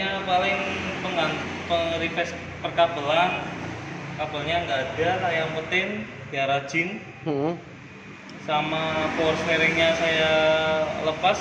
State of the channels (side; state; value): both; identical; correlation 1.00